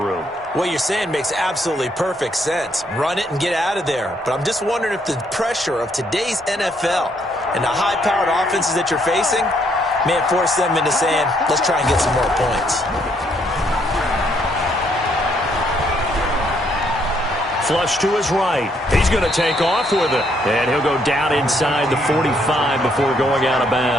What you're saying makes absolutely perfect sense. Run it and get out of there. But I'm just wondering if the pressure of today's NFL and the high-powered offenses that you're facing May have forced them into saying, let's try and get some more points. Flush to his right. He's going to take off with it. And he'll go down inside the 45 before going out of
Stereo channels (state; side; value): normal; both; correlation 0.71